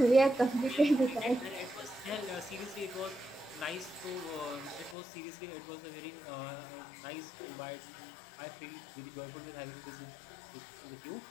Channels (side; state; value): right; drops out; at 5.0 s